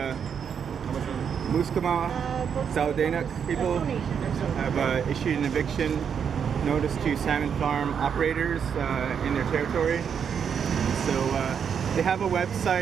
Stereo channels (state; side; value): quieter; left; 7.4 dB